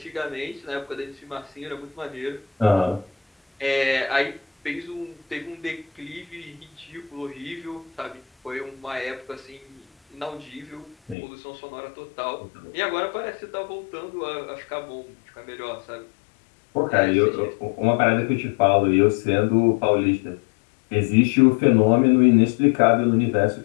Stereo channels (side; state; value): right; drops out; at 11.2 s